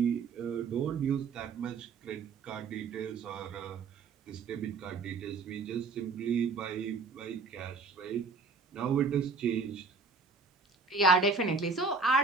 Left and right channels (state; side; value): quieter; left; 4.5 dB